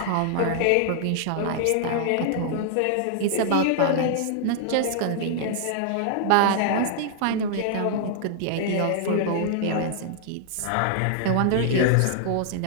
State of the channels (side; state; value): both; different; correlation -0.01